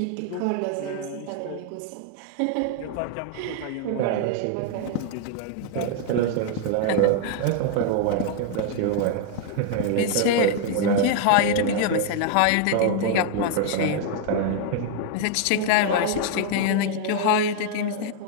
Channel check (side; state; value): both; different; correlation 0.00